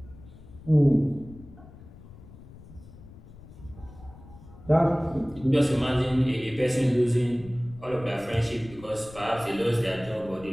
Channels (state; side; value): noise; left; rumble, 19 dB below the sound